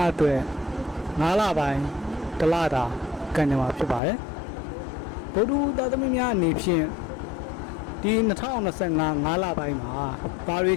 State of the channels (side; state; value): right; drops out; at 4.0 s